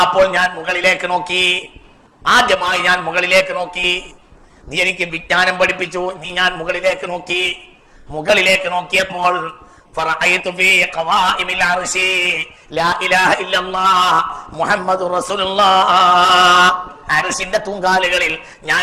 അപ്പോൾ ഞാൻ മുകളിലേക്ക് നോക്കി. ആദ്യമായി ഞാൻ മുകളിലേക്ക് നോക്കി. നീ എനിക്ക് വിജ്ഞാനം പഠിപ്പിച്ചു, ഞാൻ മുകളിലേക്ക് നോക്കിയപ്പോൾ ഫറഅയ്തു ഫീ ഖവാഇമിൽ അർശി ലാ ഇലാഹ ഇല്ലല്ലാഹ് മുഹമ്മദുർ റസൂലുള്ളാഹ്. അർശിന്റെ തൂങ്കാലുകളിൽ ഞാൻ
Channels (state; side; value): identical; both; correlation 1.00